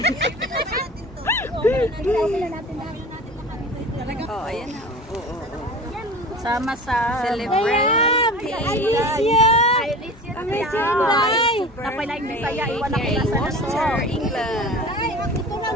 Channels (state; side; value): normal; both; correlation 0.37